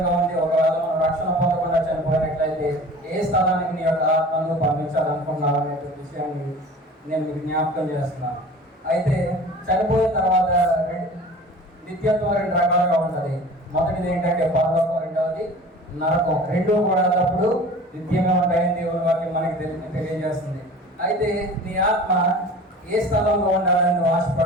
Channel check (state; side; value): normal; both; correlation 0.41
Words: ఉంది. ఒకవేళ మనం రక్షణ పొందకుండా చనిపోయినట్లయితే ఏ స్థలానికి నీ యొక్క ఆత్మను పంపించాలనుకున్నావు అనే విషయాన్ని నేను మీకు జ్ఞాపకం చేస్తున్నాను. అయితే చనిపోయిన తర్వాత నిత్యత్వం రెండు రకాలుగా ఉంటుంది. మొదటిది ఏంటంటే పరలోకం, రెండవది నరకం. రెండూ కూడా అప్పుడు నిత్యంగా ఉంటాయని దేవుని వాక్యం మనకి తెలియజేస్తుంది. అయితే నీ ఆత్మ ఏ స్థలంలో ఉండాలని నువ్వు